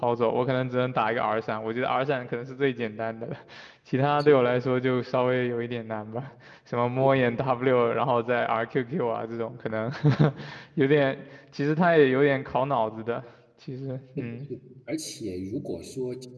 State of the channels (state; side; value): identical; both; correlation 1.00